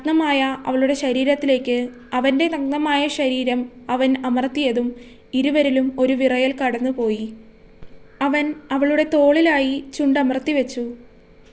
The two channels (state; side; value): identical; both; correlation 1.00